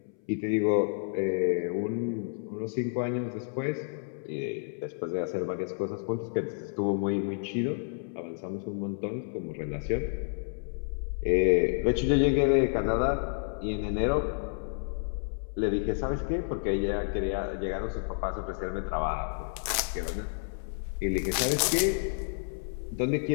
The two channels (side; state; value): right; silent; 58 dB below the other